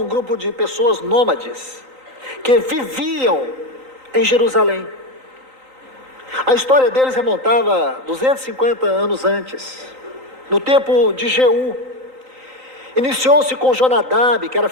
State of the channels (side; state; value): left; late; 3.9 ms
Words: grupo de pessoas nômades, que viviam em Jerusalém. A história deles remontava 250 anos antes, no tempo de Jeú. Iniciou-se com Jonadab, que era